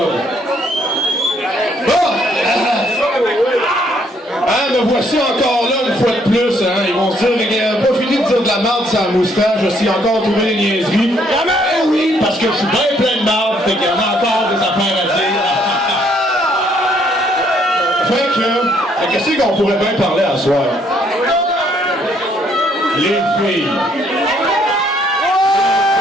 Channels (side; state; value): both; normal; correlation 0.68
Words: Bon! Me voici encore là une fois de plus. Hein. Ils vont se dire, il n'a pas fini de dire de la merde sur la moustache, je suis encore trouvé des niaiseries. Eh oui, parce que je suis bien plein de merde, fait qu'il y en a encore des affaires à dire. Fait que, qu'est-ce qu'on pourrait bien parler à soir? Les filles.